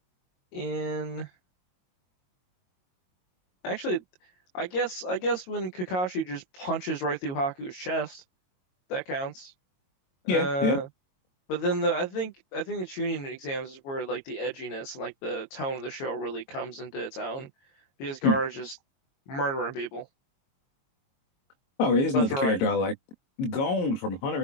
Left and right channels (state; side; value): late; right; 22 ms